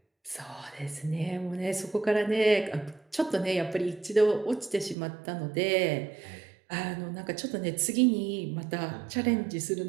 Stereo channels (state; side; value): drops out; left; at 5.0 s